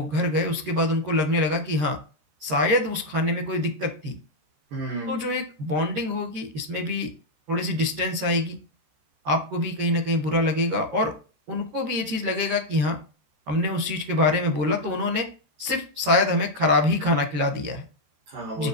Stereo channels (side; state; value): left; late; 14 ms